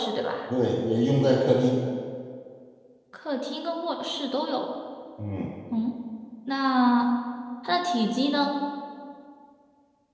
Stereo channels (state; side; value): identical; both; correlation 1.00